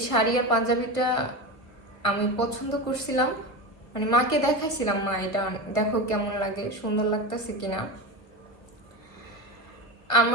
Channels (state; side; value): late; right; 1.4 ms